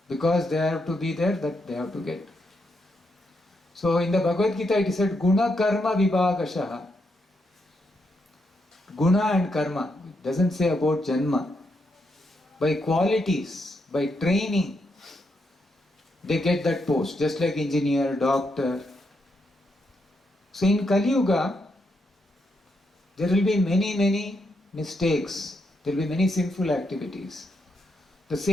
because they have to be there, that they have to get. So in the Bhagavad Gita it is said Guna Karma Vibhagashaha. Guna and Karma. It doesn't say about Janma. By qualities, by training, they get that post, just like engineer, doctor. So in Kali Yuga, there will be many mistakes, there will be many sinful activities. The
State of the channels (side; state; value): both; normal; correlation 0.80